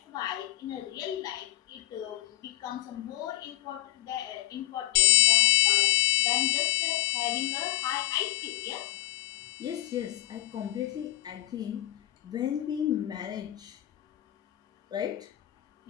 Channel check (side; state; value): right; quieter; 15.6 dB